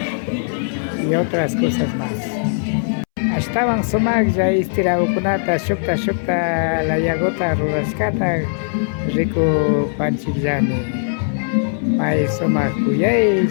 y otras cosas más. Estaban sumaglla istiraukunata shukta la yagota rurashkata rico panchillani. May sumak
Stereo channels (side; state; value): right; silent; 66 dB below the other